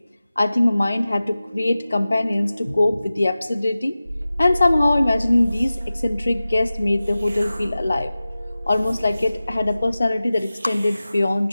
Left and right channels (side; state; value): both; inverted; correlation -0.96